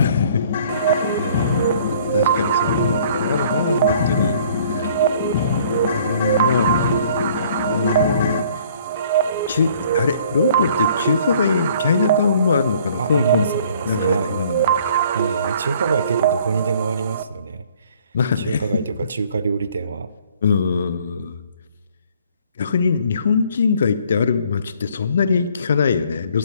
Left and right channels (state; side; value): inverted; both; correlation -0.57